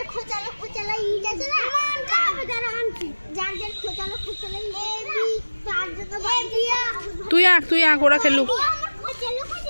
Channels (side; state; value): both; inverted; correlation -1.00